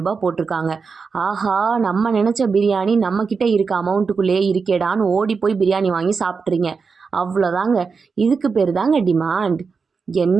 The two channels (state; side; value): quieter; left; 5.1 dB